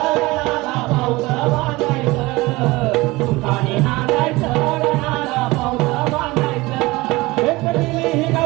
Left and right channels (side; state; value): left; quieter; 21.4 dB